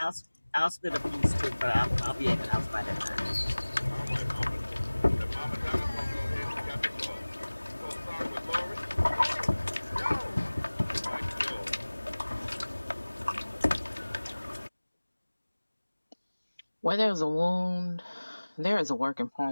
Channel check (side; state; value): both; inverted; correlation -1.00